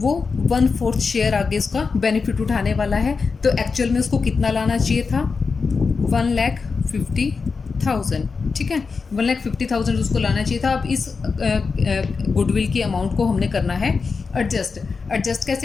1/4 शेयर आगे उसका बेनिफिट उठाने वाला है। तो एक्चुअल में उसको कितना लाना चाहिए था, 1,50,000, ठीक है। 1,50,000 उसको लाना चाहिए था। अब इस गुडविल की अमाउंट को हमने करना है एडजस्ट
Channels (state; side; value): quieter; right; 4.8 dB